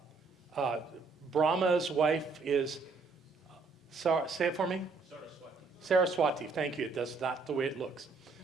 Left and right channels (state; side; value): quieter; left; 4.3 dB